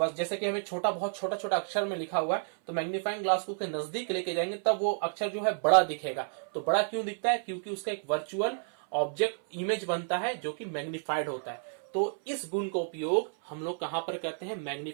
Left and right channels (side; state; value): left; silent; 57 dB below the other